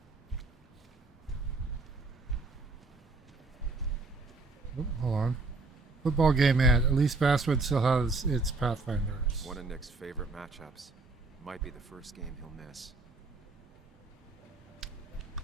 Oh, hold on. Football game at least Basswood still has its Pathfinders. One of Nick's favorite matchups. Might be the first game he'll miss.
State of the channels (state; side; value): quieter; left; 3.6 dB